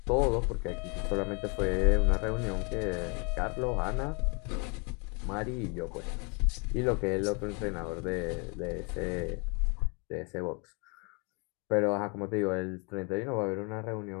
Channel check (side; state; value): right; quieter; 33.1 dB